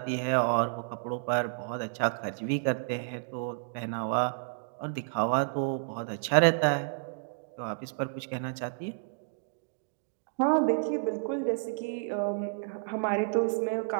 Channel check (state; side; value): silent; left; digital silence